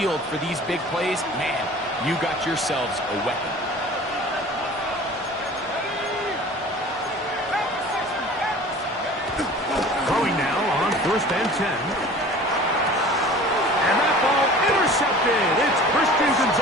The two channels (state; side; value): normal; both; correlation 0.43